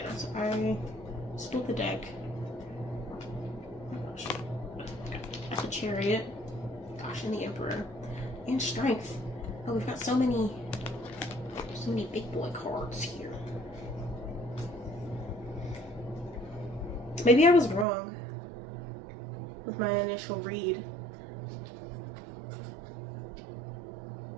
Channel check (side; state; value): left; drops out; at 17.9 s